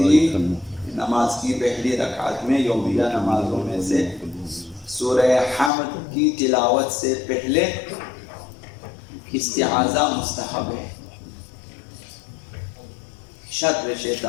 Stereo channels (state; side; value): drops out; right; at 5.7 s